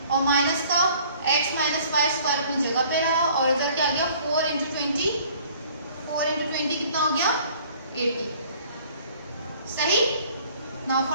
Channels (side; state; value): both; inverted; correlation -0.55